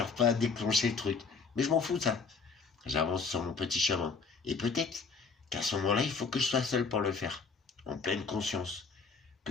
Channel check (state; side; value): quieter; right; 4.8 dB